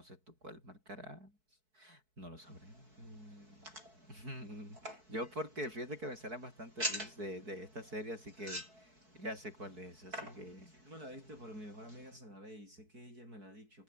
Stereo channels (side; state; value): left; late; 4.6 ms